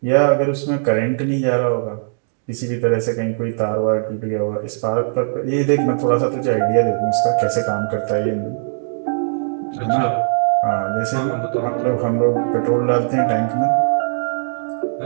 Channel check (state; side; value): silent; left; digital silence